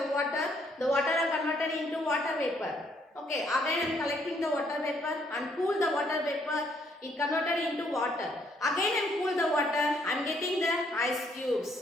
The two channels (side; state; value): both; normal; correlation 0.69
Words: water. The water are converted into water vapor. Okay, again I am collecting the water vapor and cool the water vapor. It converted into water. Again I am cool the water. I am getting the ice